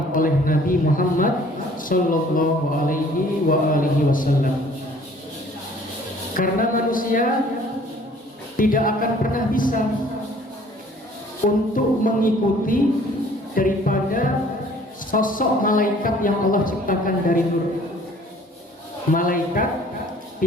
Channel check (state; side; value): normal; both; correlation 0.55